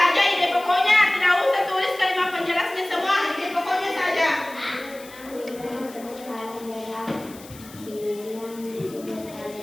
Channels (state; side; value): noise; left; hiss, 20 dB below the sound